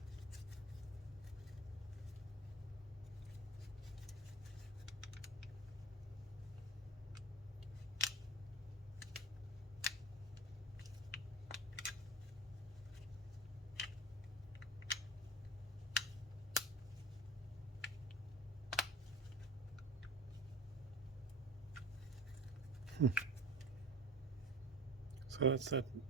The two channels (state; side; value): normal; both; correlation 0.34